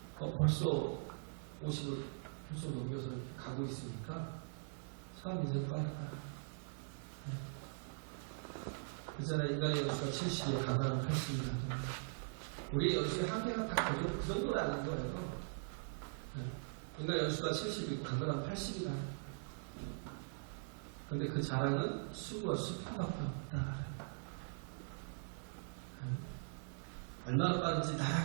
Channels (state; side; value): silent; left; digital silence